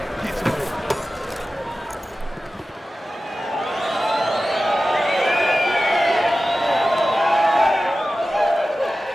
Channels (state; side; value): normal; both; correlation 0.95